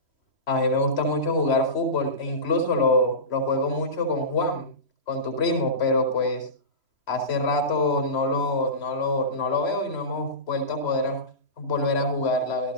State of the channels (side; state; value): right; late; 3.1 ms